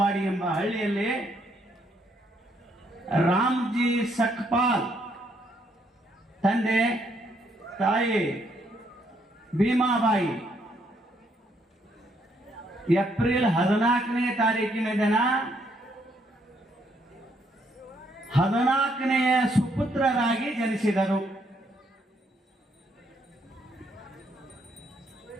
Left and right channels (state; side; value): normal; both; correlation 0.72